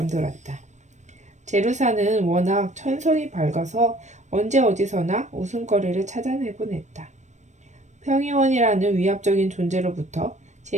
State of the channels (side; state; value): left; late; 0.34 ms